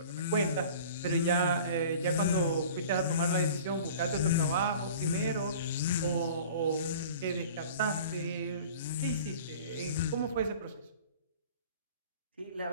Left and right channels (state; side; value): inverted; both; correlation -0.42